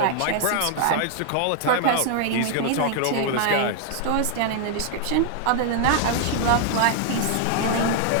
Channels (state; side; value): different; both; correlation 0.00